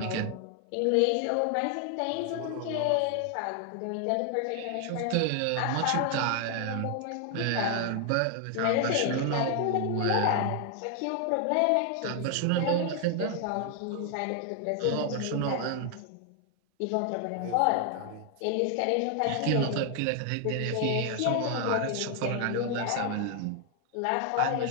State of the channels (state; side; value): different; both; correlation 0.00